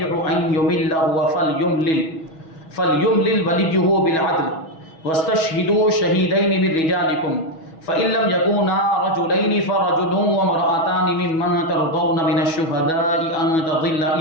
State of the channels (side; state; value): right; late; 6.2 ms